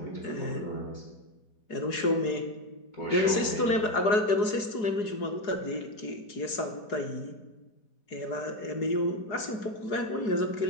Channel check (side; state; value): right; late; 4.8 ms